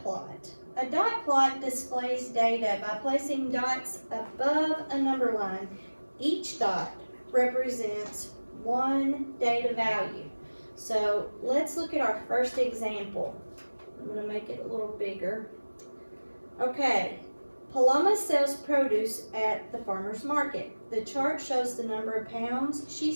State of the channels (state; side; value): inverted; both; correlation -1.00